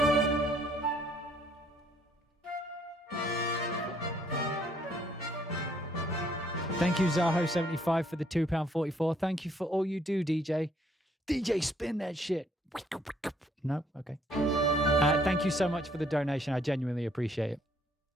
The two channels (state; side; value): normal; both; correlation 0.66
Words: Thank you, Zaho75, for the £2.44. Thank you for all you do, DJ. DJ, spin that shit. No? Okay. Thank you so much for the donation. I genuinely appreciate it.